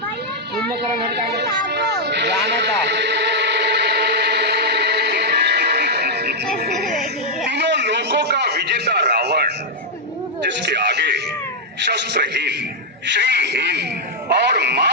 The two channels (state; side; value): normal; both; correlation -0.03